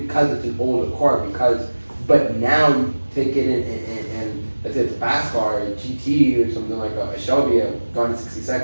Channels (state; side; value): inverted; both; correlation -1.00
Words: it's an older car. But now you take it and let's say it's a fast car, a GT or something like a Shelby, a gone in 60